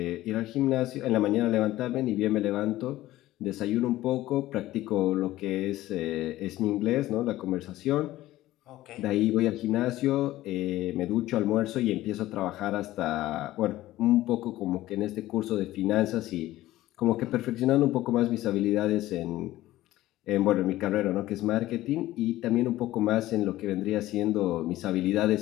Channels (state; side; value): quieter; right; 15.8 dB